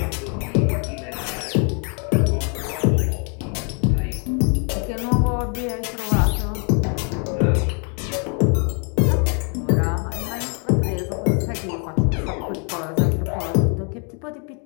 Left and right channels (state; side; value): quieter; right; 38.9 dB